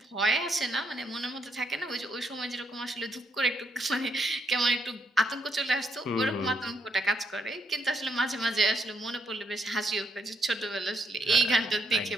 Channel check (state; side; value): normal; both; correlation 0.75